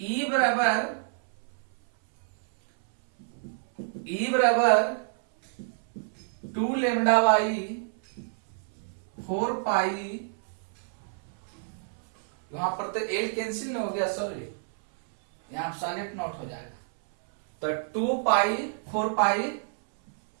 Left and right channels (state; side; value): silent; left; 59 dB below the other